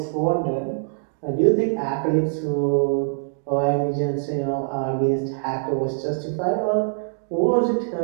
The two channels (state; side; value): silent; left; digital silence